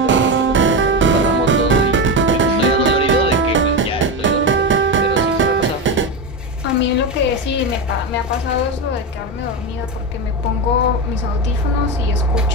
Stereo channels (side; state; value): both; normal; correlation 0.16